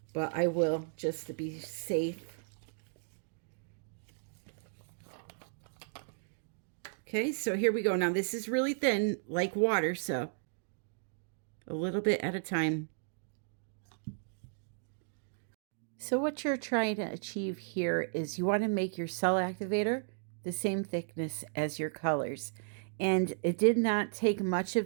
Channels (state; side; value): silent; left; digital silence